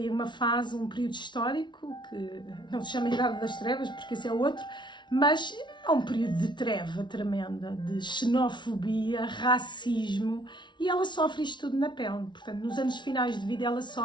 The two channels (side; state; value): right; late; 0.23 ms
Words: uma fase, um período histórico, que não se chama Idade das Trevas, porque esse é outro, mas é um período de treva tremenda, de xenofobia, racismo, e ela sofre isto tudo na pele. Portanto, nos anos finais de vida ela